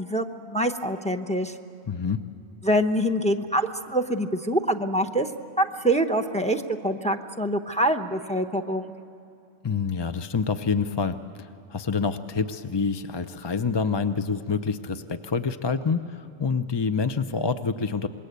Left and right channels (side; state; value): both; normal; correlation 0.19